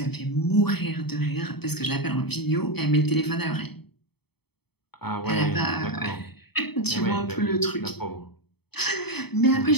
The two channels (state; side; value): late; right; 0.97 ms